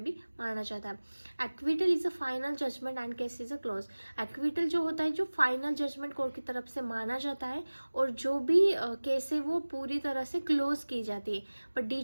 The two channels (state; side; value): inverted; both; correlation -1.00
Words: भी माना जाता है। Acquittal is a final judgement and case is a close. Acquittal जो होता है जो फाइनल जजमेंट कोर्ट की तरफ से माना जाता है और जो भी केस है वो पूरी तरह से क्लोज की जाती है। But